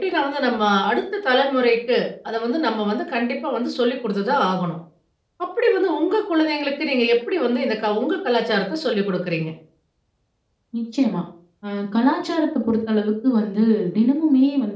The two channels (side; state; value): both; identical; correlation 1.00